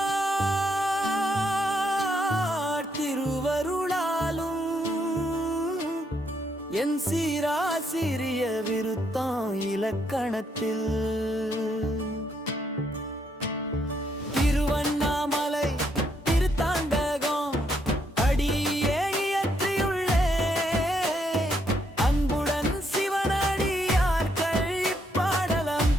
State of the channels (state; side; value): normal; both; correlation 0.74